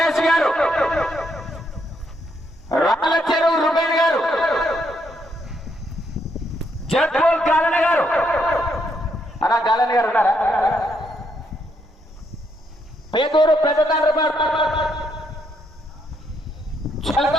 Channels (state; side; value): normal; both; correlation 0.75